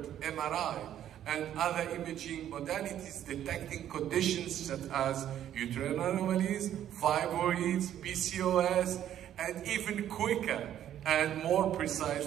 MRI and other imaging modalities detecting conditions such as uterine anomalies, fibroids, PCOS, and even quicker and more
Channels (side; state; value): left; quieter; 11.0 dB